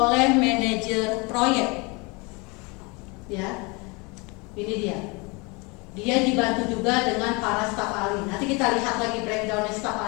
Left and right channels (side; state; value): right; quieter; 28.3 dB